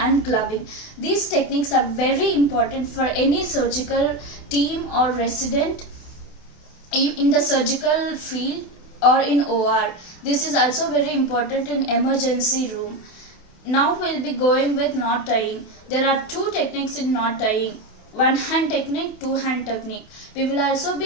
gloving. These techniques are very important for any surgical team or resident in the surgical field or in OR. This is also very important in emergency room. Now we'll be going with knot tying. There are two techniques in knot tying. One hand technique, two hand technique. We will also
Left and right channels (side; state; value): right; late; 28 ms